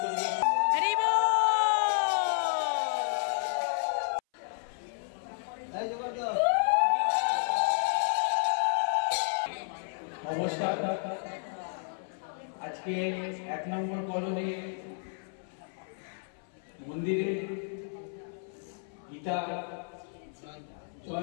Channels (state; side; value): silent; right; 57 dB below the other